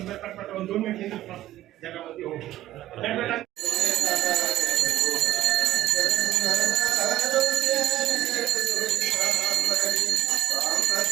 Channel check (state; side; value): quieter; left; 14.3 dB